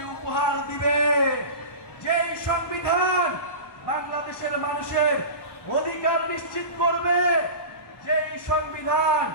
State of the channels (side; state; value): right; late; 1.1 ms